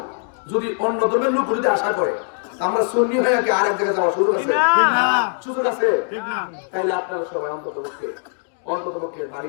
যদি অন্য ধর্মের লোক যদি আশা করে আমরা সুন্নি হয়ে কি আর এক জায়গায় যাওয়ার সুযোগ আছে? সুযোগ আছে? তাইলে আপনারা সবাই অন্ততপক্ষে বাড়ি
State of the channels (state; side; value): silent; right; 60 dB below the other